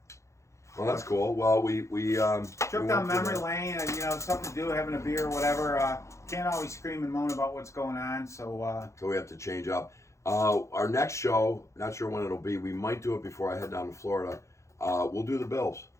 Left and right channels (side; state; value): right; late; 0.14 ms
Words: Well, that's cool. Well, we trip down memory lane, and something to do, having a beer, whatever. Can't always scream and moan about what's going on, so we have to change up. Our next show, not sure when it'll be. We might do it before I head down to Florida. We'll do the Bills.